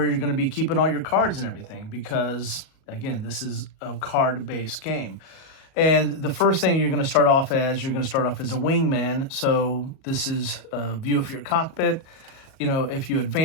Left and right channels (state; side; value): late; right; 37 ms